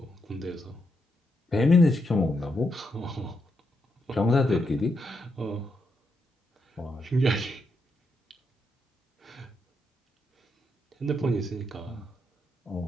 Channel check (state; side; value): normal; both; correlation 0.81